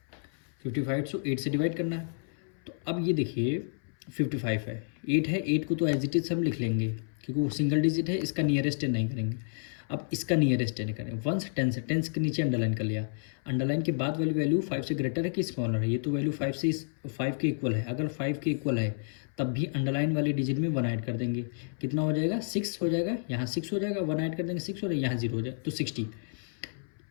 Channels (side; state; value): right; silent; 58 dB below the other